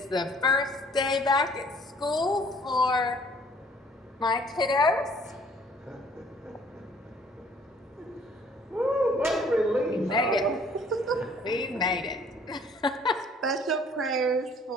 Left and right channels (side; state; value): both; normal; correlation 0.58